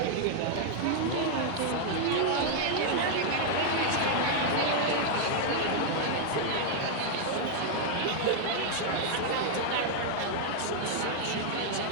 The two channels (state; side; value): different; both; correlation 0.00